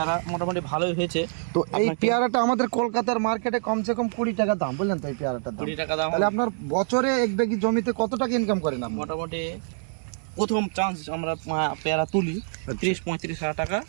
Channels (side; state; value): left; silent; digital silence